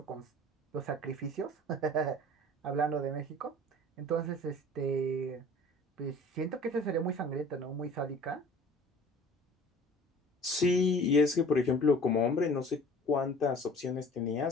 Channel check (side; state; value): both; normal; correlation 0.47